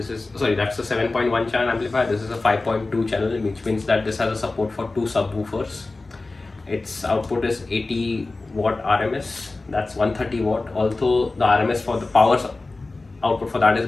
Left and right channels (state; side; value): quieter; right; 3.3 dB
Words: a 7.1 channel amplifier. This is a 5.2 channel, which means that this has a support for 2 subwoofers. Its output is 80 watt RMS. That's 130 watt. Although the RMS for the power output for that is